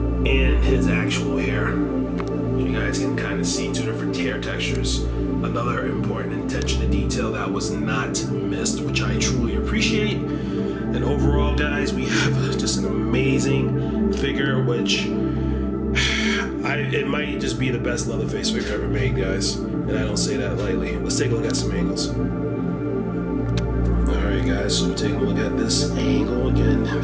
his actual hair. You guys can kind of see two different hair textures. Another important attention to detail that was not missed, which I truly appreciate. And overall, guys, we have just an amazing figure, which it might just be the best Leatherface figure ever made, guys. And I don't say that lightly. Let's take a look at some angles. Alright, guys, so we're taking a look at this angle. Again,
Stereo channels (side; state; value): both; identical; correlation 1.00